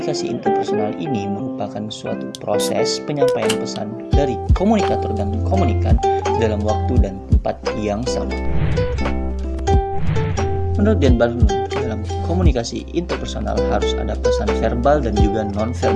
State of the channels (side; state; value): both; identical; correlation 1.00